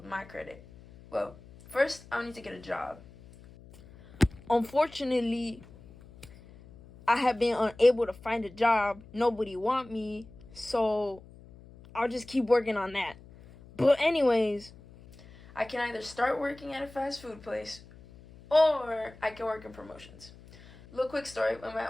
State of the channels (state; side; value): noise; left; hum, 21 dB below the sound